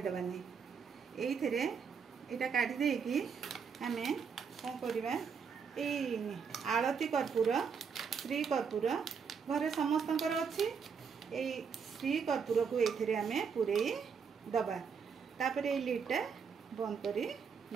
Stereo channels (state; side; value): quieter; left; 6.2 dB